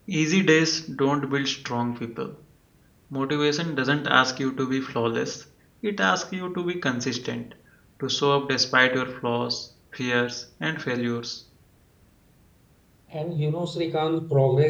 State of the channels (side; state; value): both; identical; correlation 1.00